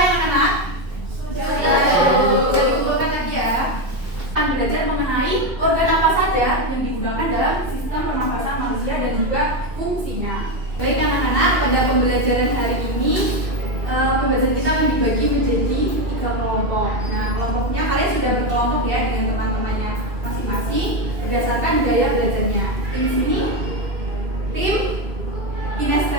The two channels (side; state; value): left; late; 2.5 ms